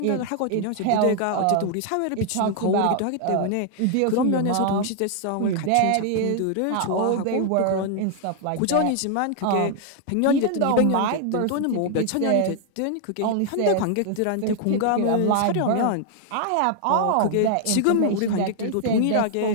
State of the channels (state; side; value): different; both; correlation 0.00